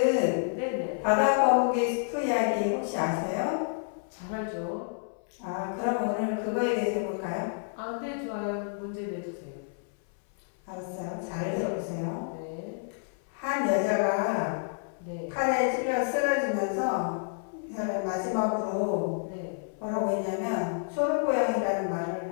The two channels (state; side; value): silent; right; 56 dB below the other